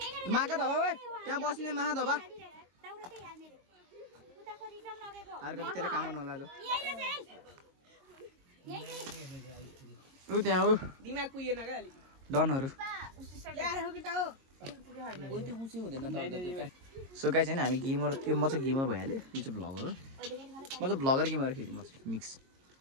माका धबा भाइ त्यहाँ बस्ने माहा धबा अर्को त्यसलाई काम गर्नु होला ऊ त्यहाँ ऊ डनहरू सो गाइज होइन हामी गेमर त्यो म चाहिँ गेमर भइहाल्यो यो चाहिँ भ्लगर हो म चाहिँ भ्लगर गेमर फेरि म चाहिँ मिक्स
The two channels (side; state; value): left; late; 22 ms